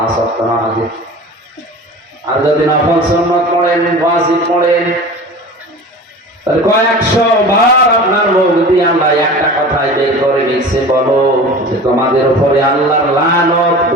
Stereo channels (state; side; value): normal; both; correlation 0.37